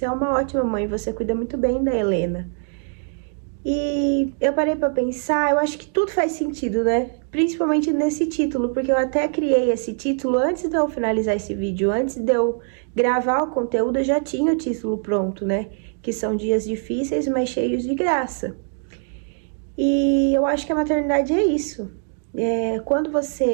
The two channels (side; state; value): left; silent; 60 dB below the other